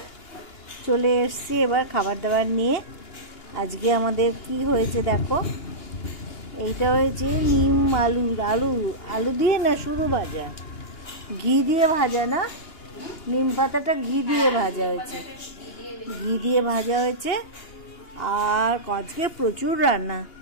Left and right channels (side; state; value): right; late; 2.9 ms